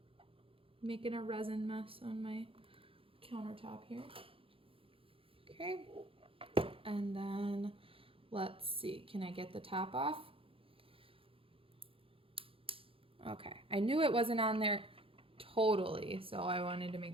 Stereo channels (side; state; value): left; late; 0.27 ms